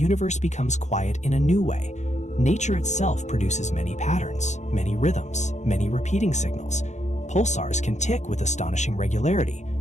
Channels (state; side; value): late; right; 0.34 ms